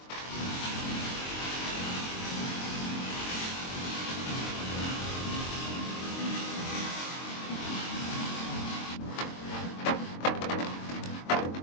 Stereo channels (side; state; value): right; late; 22 ms